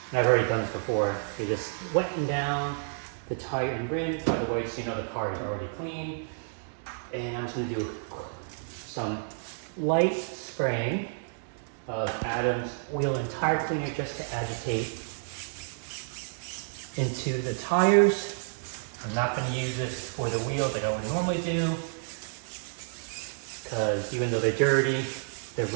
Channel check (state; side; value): silent; left; 58 dB below the other